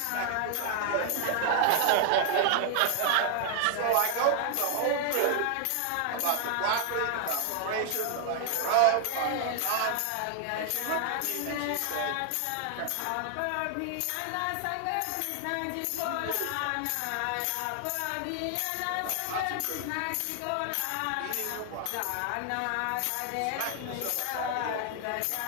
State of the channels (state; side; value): different; both; correlation 0.00